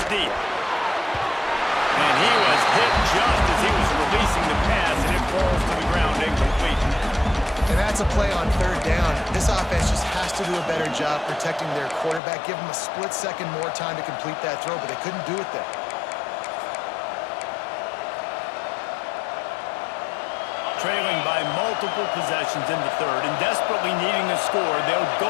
deep. And he was hit just as he was releasing the pass, and it falls to the ground incomplete. And that's a play on third down. This offense just has to do a better job protecting their quarterback. Give him a split second more time to complete that throw, but they couldn't do it there. Trailing by multiple possessions in the third and desperately needing to score, they'll go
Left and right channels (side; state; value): right; drops out; at 12.2 s